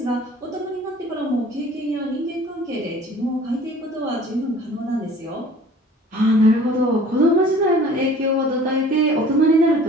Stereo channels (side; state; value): both; normal; correlation 0.48